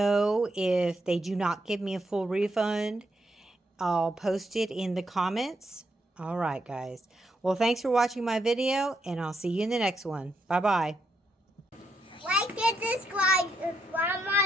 if they do not give me a full refund. I'll post it in the comments. All right, guys. Well, thanks for watching my video, and I'll see you in the next one. Bye-bye. Like and subscribe to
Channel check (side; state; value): both; normal; correlation 0.79